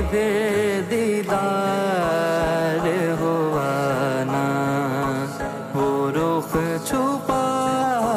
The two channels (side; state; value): both; identical; correlation 1.00